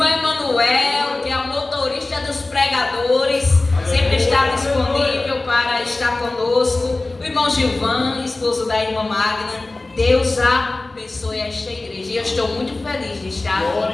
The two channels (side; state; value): right; quieter; 3.1 dB